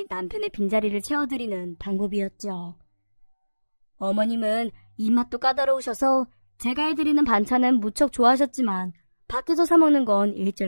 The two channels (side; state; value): both; inverted; correlation -1.00